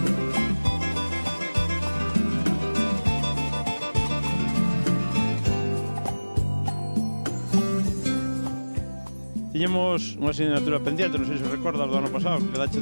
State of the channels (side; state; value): both; inverted; correlation -1.00